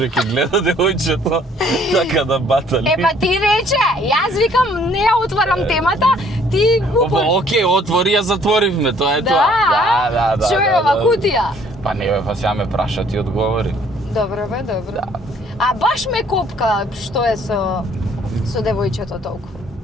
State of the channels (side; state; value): both; normal; correlation 0.60